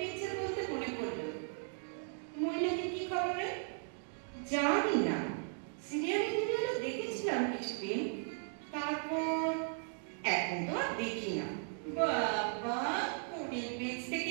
বলতে মনে পড়লো, মহিলাকে কি খবরে? জানি না, সিরিয়ালে দেখেছিলাম কিছুদিন, তারপর এখন তো আর দেখি না। বাবা, কোনের বেঞ্চ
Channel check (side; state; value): left; silent; 53 dB below the other